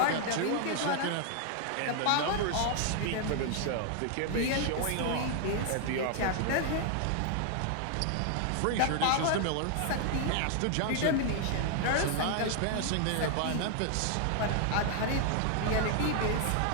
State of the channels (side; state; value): both; different; correlation 0.00